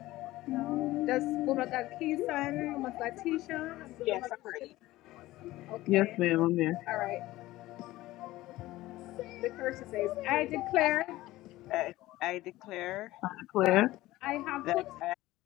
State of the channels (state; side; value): quieter; right; 17.2 dB